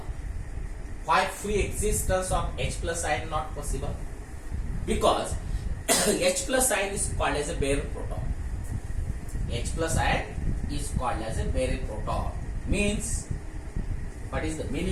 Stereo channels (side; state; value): both; identical; correlation 1.00